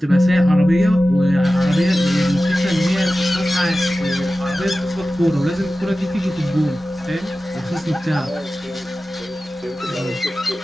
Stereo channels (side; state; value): both; normal; correlation 0.95